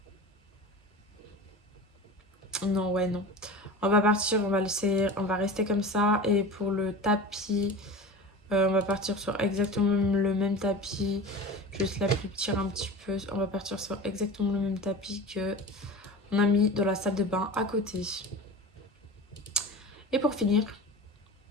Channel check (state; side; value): normal; both; correlation 0.33